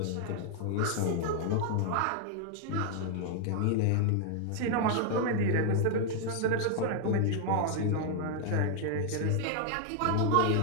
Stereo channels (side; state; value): both; different; correlation 0.00